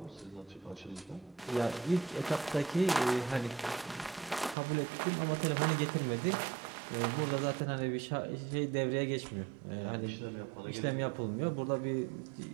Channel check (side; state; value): left; drops out; at 4.5 s